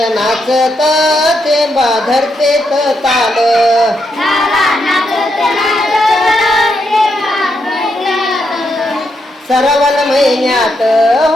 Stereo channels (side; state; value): both; normal; correlation 0.81